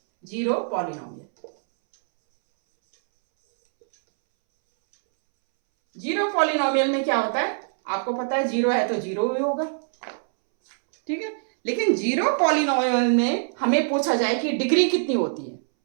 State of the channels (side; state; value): left; silent; 63 dB below the other